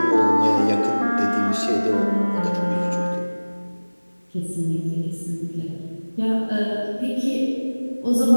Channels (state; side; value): inverted; both; correlation -1.00